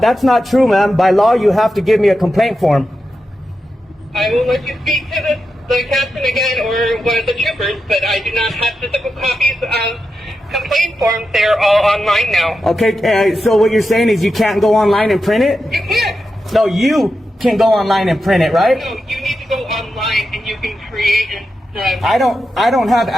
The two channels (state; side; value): normal; both; correlation 0.89